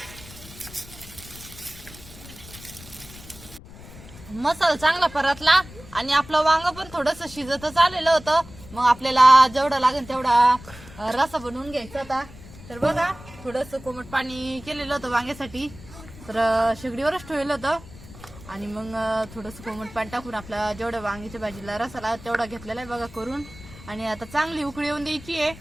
मसाला चांगला परतला आणि आपलं वांग पण थोडंसं शिजतच आलेलं होतं. मग आपल्याला जेवढा लागेल तेवढा रसा बनवून घ्यायचा होता. तर बघा थोडंसं कोमट पाणी केलेलं होतं वांग्यासाठी तर शेगडीवरच ठेवलं होतं आणि मग थोडंसं कोमट पाणी टाकून आपला जेवढ्या वांग्याच्या भाजीला रसाला तेवढा घेतलेला आहे बघा करून. आणि आता चांगली उकळी येऊन द्यायची आहे.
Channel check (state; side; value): noise; left; rumble, 18 dB below the sound